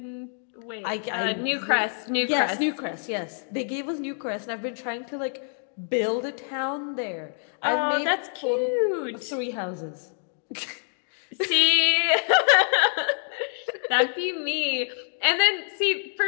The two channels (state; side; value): silent; right; 58 dB below the other